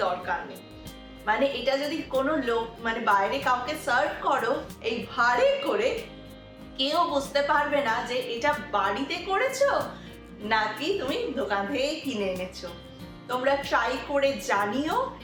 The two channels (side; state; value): both; identical; correlation 1.00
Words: দরকার নেই। মানে এটা যদি কোনো লোক মানে বাইরে কাউকে সার্ভ করো এই ভাঁড়ে করে, কেউ বুঝতে পারবে না যে এটা বাড়িতে করেছো নাকি তুমি দোকান থেকে কিনে এনেছো। তোমরা ট্রাই করে জানিও।